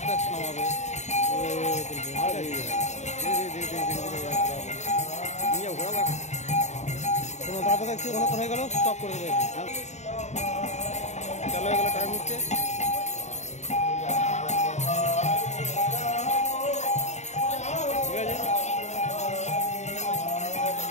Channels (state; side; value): late; right; 0.33 ms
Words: আস্তে নামাবে তারপর দেখছি অনেকক্ষণ হয়ে গেল স্টপ করে দেবে চলো এগুলো টাইম হচ্ছে ঠিক আছে